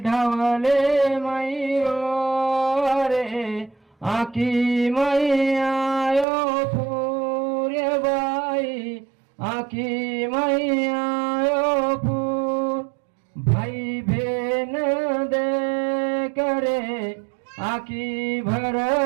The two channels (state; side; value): drops out; left; at 6.2 s